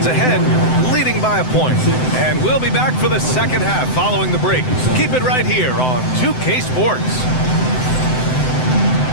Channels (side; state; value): right; late; 7.8 ms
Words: ahead, leading by a point. And we'll be back for the second half following the break. Keep it right here on 2K Sports.